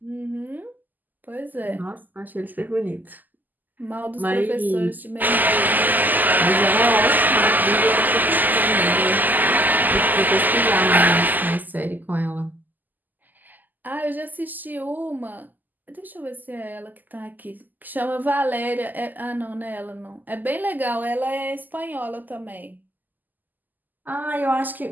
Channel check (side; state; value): left; late; 0.085 ms